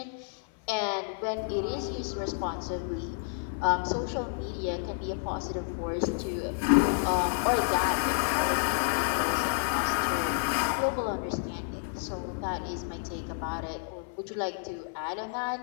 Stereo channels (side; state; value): right; silent; 58 dB below the other